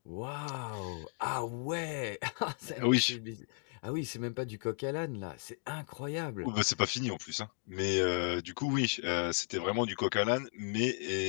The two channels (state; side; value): silent; right; 54 dB below the other